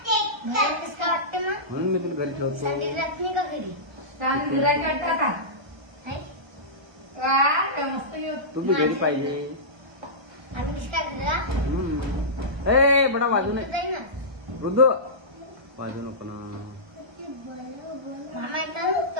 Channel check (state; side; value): late; left; 1.3 ms